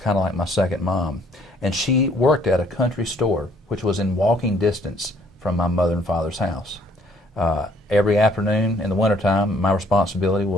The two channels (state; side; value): normal; both; correlation 0.62